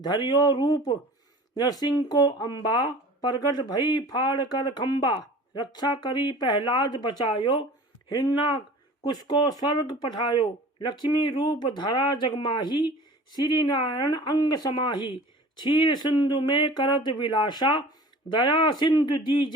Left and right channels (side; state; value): both; normal; correlation 0.42